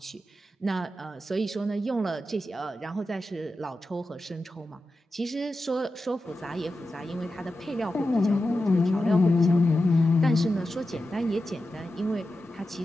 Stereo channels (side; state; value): both; normal; correlation 0.91